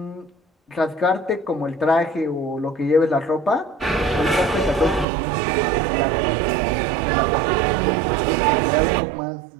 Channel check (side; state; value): left; drops out; at 5.1 s